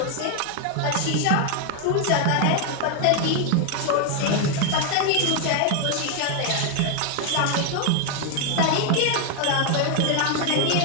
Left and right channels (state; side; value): different; both; correlation 0.01